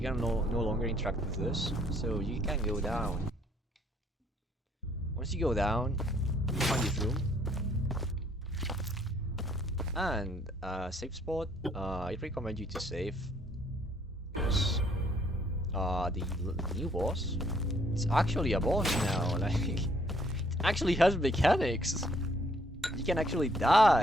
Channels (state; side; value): normal; both; correlation 0.65